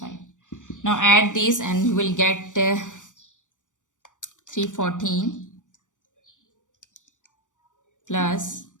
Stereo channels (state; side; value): late; right; 0.86 ms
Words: Now add these and you will get 314 plus